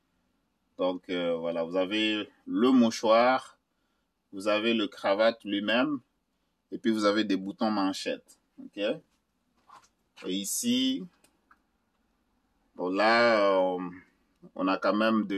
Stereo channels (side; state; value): both; identical; correlation 1.00